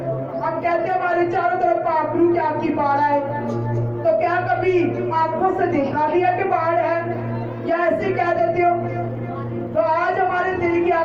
हम कहते हैं हमारे चारों तरफ पाखरू की आपकी बाढ़ है, तो क्या कभी आंखों से देखा भी है कि बाढ़ है, या ऐसे कह देते हो? तो आज हमारे दिल की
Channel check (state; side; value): identical; both; correlation 1.00